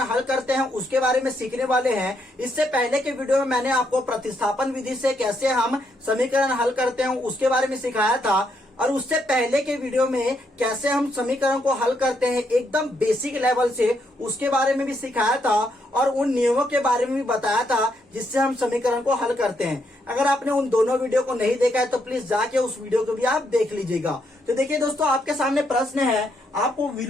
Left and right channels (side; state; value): both; normal; correlation 0.76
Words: हल करते हैं उसके बारे में सीखने वाले हैं। इससे पहले के वीडियो में मैंने आपको प्रतिस्थापन विधि से कैसे हम समीकरण हल करते हैं उसके बारे में सिखाया था, और उससे पहले के वीडियो में कैसे हम समीकरण को हल करते हैं एकदम बेसिक लेवल से उसके बारे में भी सिखाया था, और उन नियमों के बारे में भी बताया था जिससे हम समीकरण को हल करते हैं। अगर आपने उन दोनों वीडियो को नहीं देखा है तो प्लीज जाके उस वीडियो को भी आप देख लीजिएगा। तो देखिए दोस्तों, आपके सामने प्रश्न है, आपको